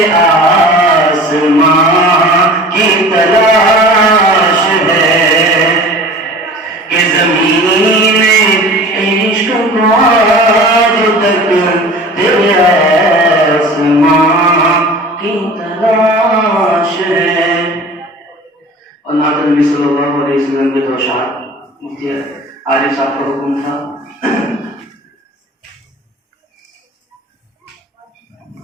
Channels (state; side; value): normal; both; correlation 0.41